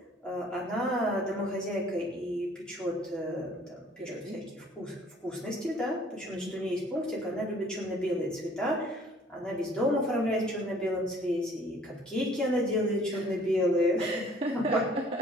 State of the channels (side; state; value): both; normal; correlation 0.56